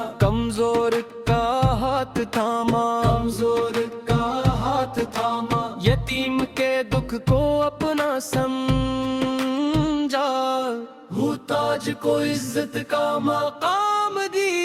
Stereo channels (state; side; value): identical; both; correlation 1.00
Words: کمزور کا ہاتھ تھاما، کمزور کا ہاتھ تھاما، یتیم کے دکھ کو اپنا سمجھا، محتاج کو عزت کا مقام